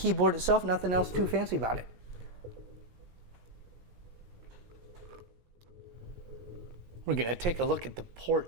itself. Nothing else too fancy about it. We're going to take a look at the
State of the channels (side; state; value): left; late; 17 ms